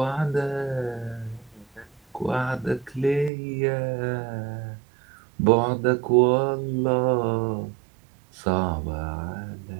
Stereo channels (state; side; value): drops out; left; at 3.3 s